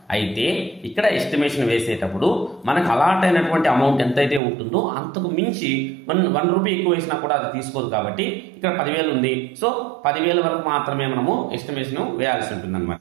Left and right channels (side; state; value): left; drops out; at 4.4 s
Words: అయితే ఇక్కడ ఎస్టిమేషన్ వేసేటప్పుడు మనకు అలాట్ అయినటువంటి అమౌంట్ ఎంతైతే ఉంటుందో అంతకు మించి 1 రూపీ ఎక్కువ వేసినా కూడా అది తీసుకోదు కాబట్టి ఇక్కడ 10,000 ఉంది. సో 10,000 వరకు మాత్రమే మనము ఎస్టిమేషన్ వేయాల్సి ఉంటుంది అనమాట.